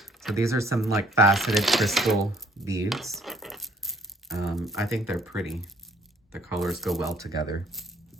So these are some like faceted crystal beads. I think they're pretty. The colors go well together.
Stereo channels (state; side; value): normal; both; correlation 0.60